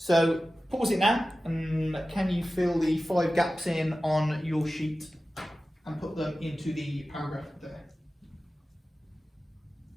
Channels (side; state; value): both; normal; correlation 0.95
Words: pause it now, and can you fill the 5 gaps in on your sheet and put them into the paragraph there?